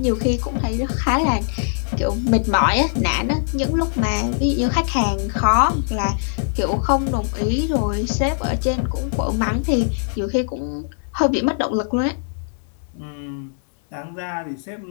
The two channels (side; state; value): right; silent; digital silence